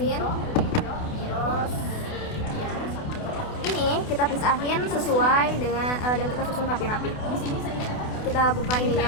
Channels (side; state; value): right; late; 28 ms